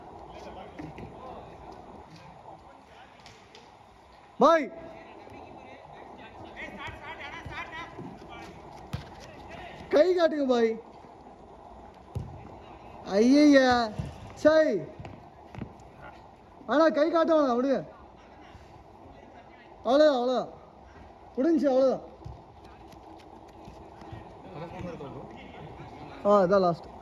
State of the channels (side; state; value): both; identical; correlation 1.00